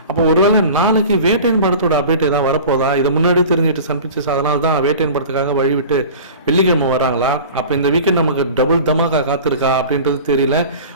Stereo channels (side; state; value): both; inverted; correlation -0.38